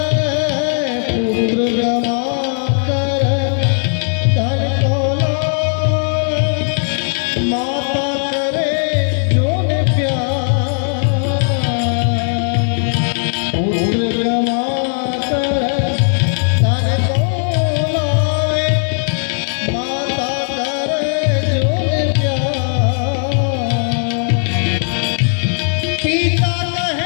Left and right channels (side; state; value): right; silent; 61 dB below the other